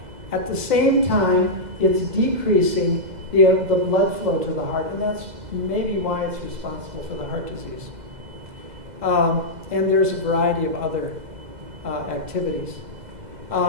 At the same time, it's decreasing the blood flow to the heart, and that's maybe why it's responsible for the heart disease. And there's a variety of other activities.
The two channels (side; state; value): left; late; 2.0 ms